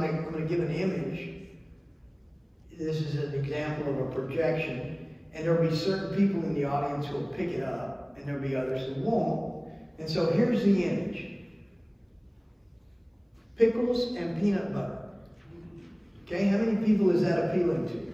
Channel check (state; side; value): identical; both; correlation 1.00